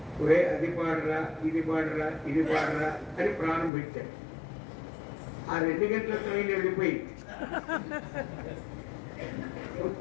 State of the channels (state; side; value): drops out; right; at 3.7 s